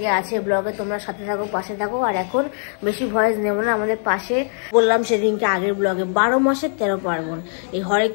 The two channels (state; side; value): silent; right; 65 dB below the other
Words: আছে ব্লগে, তোমরা সাথে থাকো, পাশে থাকো। আর এখন বেশি ভয়েস নেব না। আমাদের পাশে বললাম সেদিনকে আগের ব্লগে 12 মাসের 13 পার্বণ, এই হরে